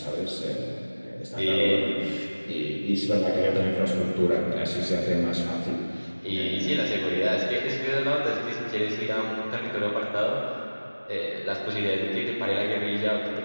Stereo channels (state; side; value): inverted; both; correlation -1.00